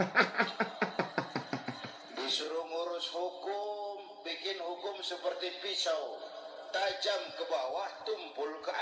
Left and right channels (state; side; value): identical; both; correlation 1.00